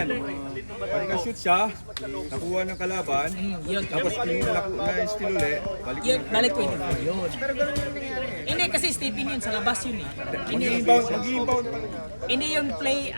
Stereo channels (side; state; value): both; inverted; correlation -1.00